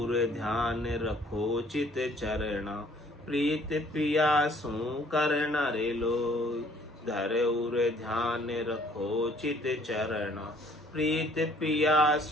ध्यान रखो चित चरणा, प्रीत पियासु करना रे लोय। धर उर ध्यान रखो चित चरणा, प्रीत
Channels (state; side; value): normal; both; correlation 0.59